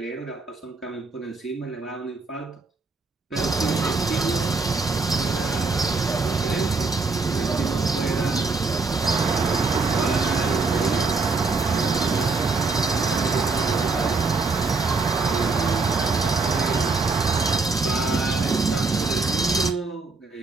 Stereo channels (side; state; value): left; quieter; 4.0 dB